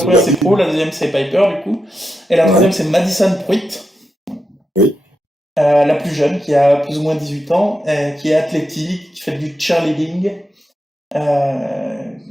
Pro, la deuxième, c'est Piper, du coup. Et la troisième, c'est Madison Pruitt. Oui. La plus jeune, qui a plus ou moins 18 ans, qui est athlétique, qui fait du cheerleading.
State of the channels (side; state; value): both; normal; correlation 0.87